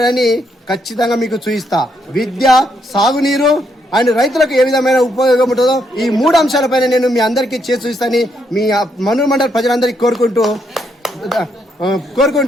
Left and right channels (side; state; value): both; normal; correlation 0.76